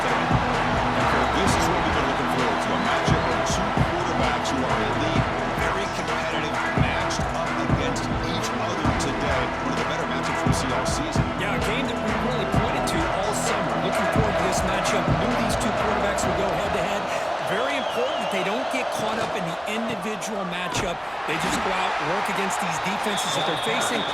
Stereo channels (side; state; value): both; identical; correlation 1.00